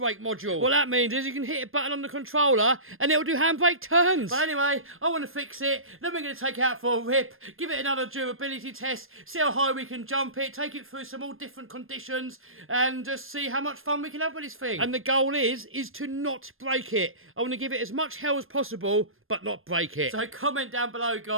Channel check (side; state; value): left; late; 0.60 ms